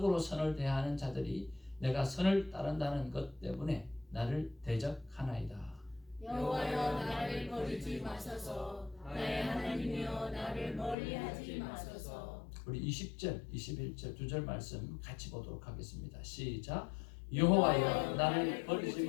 선을 대하는 자들이 내가 선을 따른다는 것 때문에 나를 대적하나이다. 여호와여, 나를 버리지 마소서. 나의 하나님이여, 나를 멀리하지 마소서. 우리 20절, 21절 두 절 말씀 같이 보도록 하겠습니다. 시작. 여호와여, 나를 버리지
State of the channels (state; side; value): drops out; right; at 11.0 s